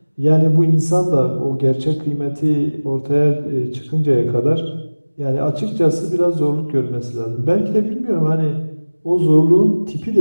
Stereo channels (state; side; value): inverted; both; correlation -1.00